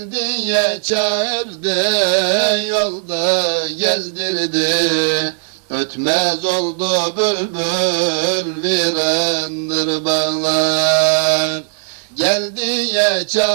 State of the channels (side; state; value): left; silent; digital silence